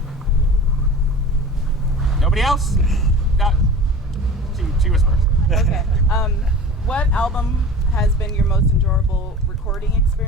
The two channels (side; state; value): both; normal; correlation 0.38